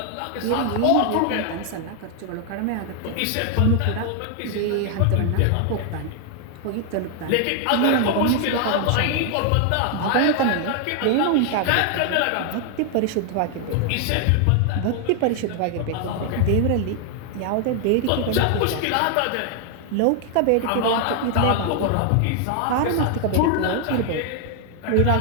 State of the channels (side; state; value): both; different; correlation 0.00